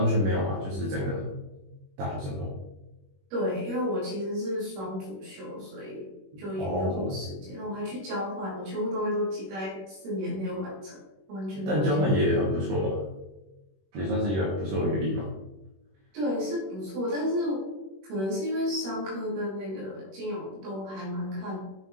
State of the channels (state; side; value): late; left; 21 ms